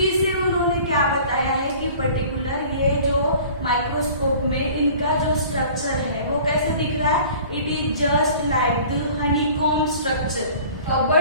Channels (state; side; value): inverted; both; correlation -0.46